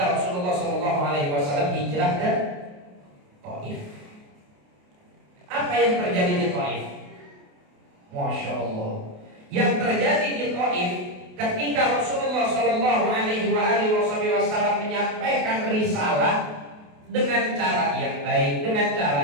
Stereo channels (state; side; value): late; left; 28 ms